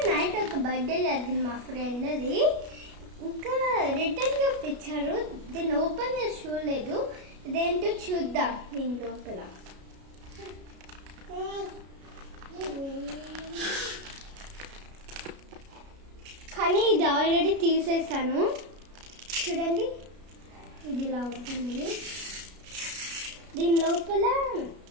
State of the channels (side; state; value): left; late; 33 ms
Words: నైట్ ఒక బర్త్డే జరిగింది మా ఫ్రెండ్ది. ఇంకా రిటర్న్ గిఫ్ట్ ఇచ్చారు. దీన్ని ఓపెన్ చేసి చూడలేదు. ఇదేంటో చూద్దాం దీని లోపల. కానీ ఇది ఆల్రెడీ తీసేసాను. చూడండి ఇది ఇలా ఉంటుంది. దీని లోపల